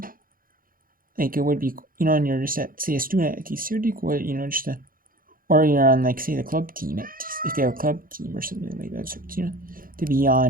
Like, it would be, and you're just a student at TCU, it would be cool, or you're on, say, the club team, if they have a club team or something like that, so, to be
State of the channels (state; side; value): late; left; 0.41 ms